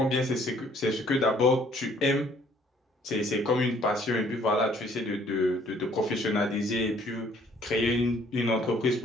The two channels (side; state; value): both; normal; correlation 0.61